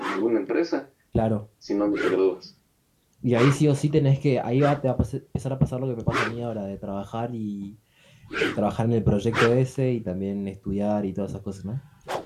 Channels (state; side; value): identical; both; correlation 1.00